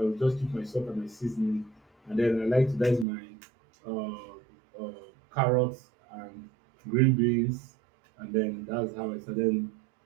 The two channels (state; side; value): drops out; left; at 3.1 s